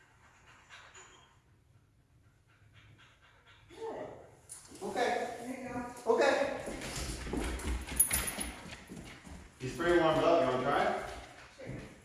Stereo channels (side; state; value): both; identical; correlation 1.00